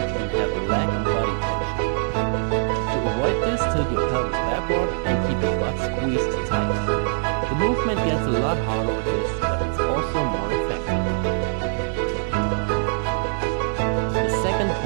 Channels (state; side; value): silent; left; digital silence